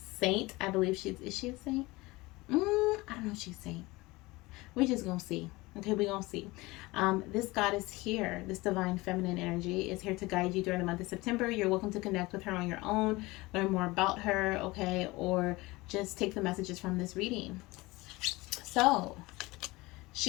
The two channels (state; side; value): quieter; right; 21.7 dB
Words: I believe is she a saint? I don't know if she's a saint. We're just going to see. Okay, we're going to see. This goddess here, this divine feminine energy, is here to guide you during the month of September. You're welcome to connect with her on your own, learn more about her, okay? Or just take the messages from this reading. So,